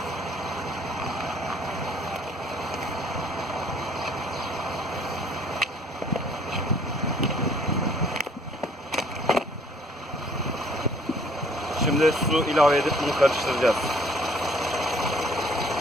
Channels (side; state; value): both; normal; correlation 0.58